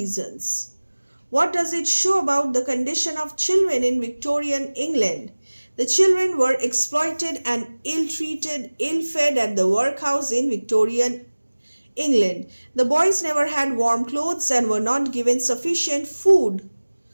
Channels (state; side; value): inverted; both; correlation -1.00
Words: What does it show about the condition of children in Victorian England? The children were exploited and ill-treated, ill-fed at the workhouse in Victorian England. The boys never had warm clothes and were not given sufficient food.